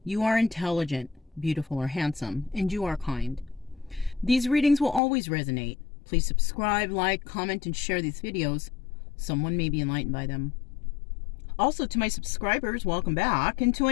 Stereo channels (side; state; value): right; drops out; at 5.0 s